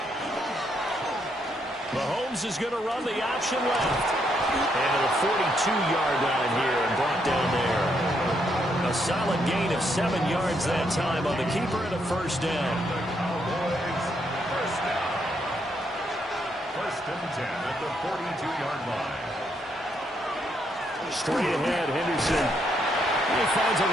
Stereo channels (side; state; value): both; normal; correlation 0.76